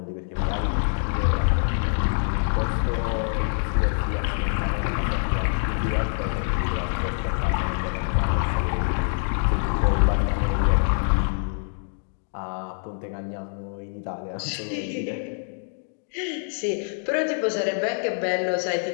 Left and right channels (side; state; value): right; silent; digital silence